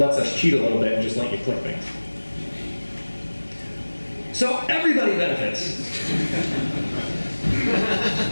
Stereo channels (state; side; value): inverted; both; correlation -1.00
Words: us cheat a little bit and just let you click things. So everybody benefits.